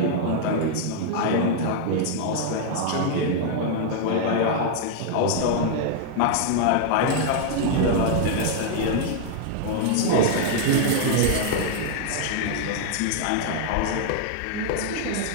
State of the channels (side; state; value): both; different; correlation 0.00